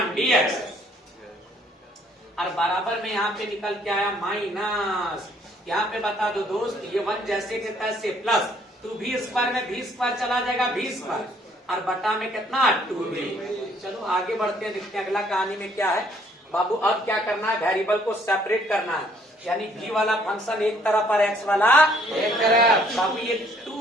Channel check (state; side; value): normal; both; correlation 0.63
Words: dx और बराबर में यहाँ पे निकल के आया माइनस। यहाँ पे बता दो दोस्त, ये 1 जैसे के तैसे प्लस 2v स्क्वायर में v स्क्वायर चला जाएगा v स्क्वायर और बटा में कितना 2v। चलो आगे बढ़ते हैं, देखते हैं अगला कहानी में क्या है। बाबू अब क्या करना है? वेरिएबल को सेपरेट करना है, यानी v वाला फंक्शन एक तरफ और x वाला एक तरफ। बाबू ये